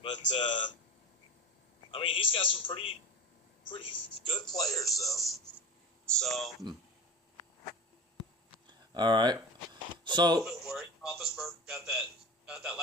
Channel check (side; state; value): both; normal; correlation 0.31